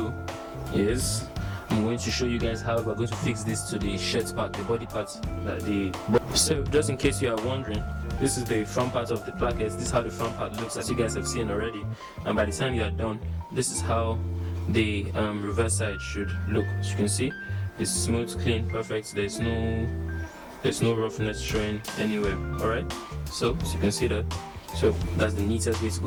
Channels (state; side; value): identical; both; correlation 1.00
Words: is, I'm going to show you guys how we're going to fix this to the shirt part, the body part. So just in case you are wondering, this is the front part of the plackets. This is how the front part looks, as you guys have seen already. And by the time you are done, this is how the reverse side should look. As you can see, it's smooth, clean, perfect. There's no roughness showing anywhere. Alright, so as you can see that. So that's the neatest way to